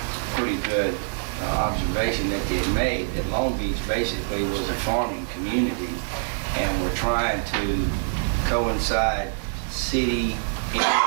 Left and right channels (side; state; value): left; silent; digital silence